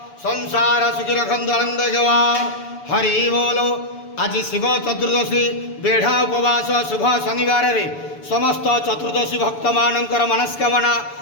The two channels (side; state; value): right; late; 7.0 ms